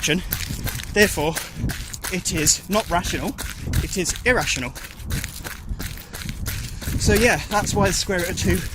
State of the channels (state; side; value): identical; both; correlation 1.00